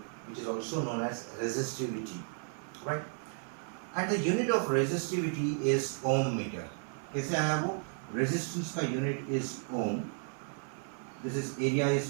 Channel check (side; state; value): left; silent; 55 dB below the other